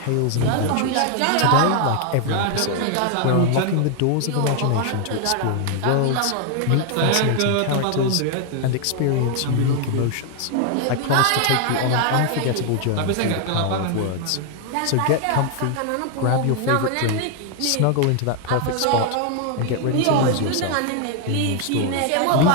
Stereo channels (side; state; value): both; different; correlation 0.00